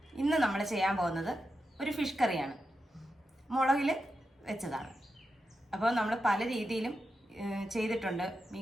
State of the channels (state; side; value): normal; both; correlation 0.89